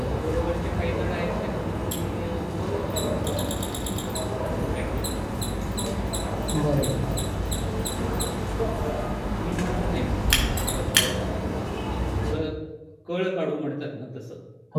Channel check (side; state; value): both; identical; correlation 1.00